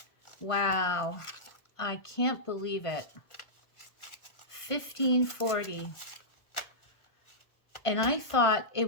Wow. I can't believe it. 1540. And I thought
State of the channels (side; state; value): right; late; 1.4 ms